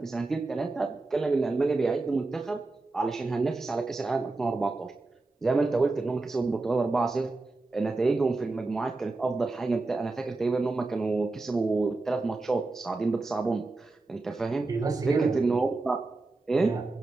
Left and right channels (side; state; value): left; quieter; 3.4 dB